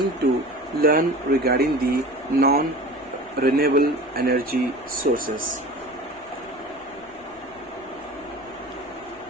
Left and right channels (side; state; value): left; noise; rumble, 27 dB below the sound